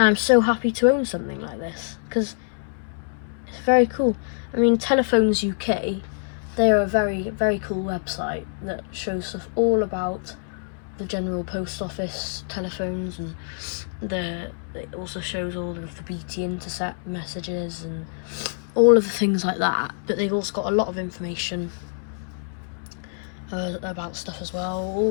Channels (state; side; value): silent; right; 61 dB below the other